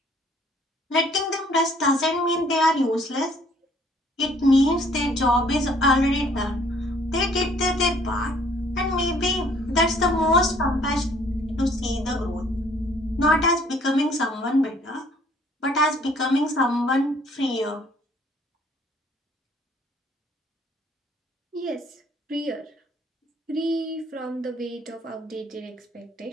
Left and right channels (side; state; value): both; normal; correlation 0.60